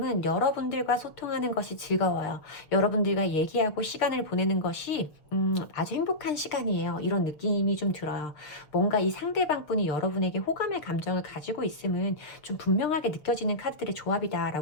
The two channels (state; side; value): late; right; 6.5 ms